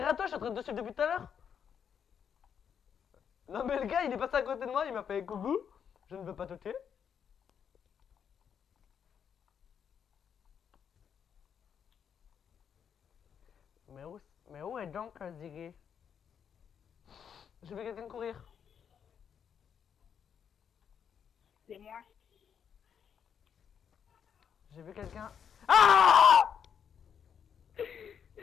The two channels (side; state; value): right; quieter; 7.8 dB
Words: toi, je suis en train de te suivre depuis tout à l'heure. Non, mais le gars, il est passé à côté de moi, il m'a fait coucou. Je ne veux pas te tuer. Mais où est donc Ziggy? Je vais quelqu'un courir. C'est moi. J'ai vu quelqu'un. Ah!